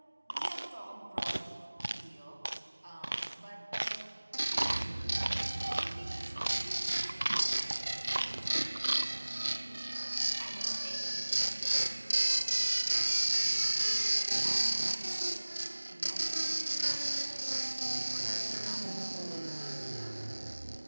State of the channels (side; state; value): both; inverted; correlation -1.00